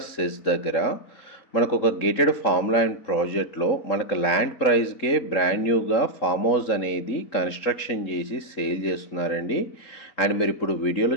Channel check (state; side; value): late; right; 3.8 ms